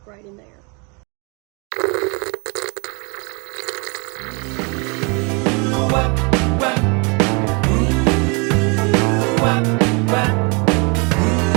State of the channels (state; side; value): quieter; left; 32.1 dB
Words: right in there.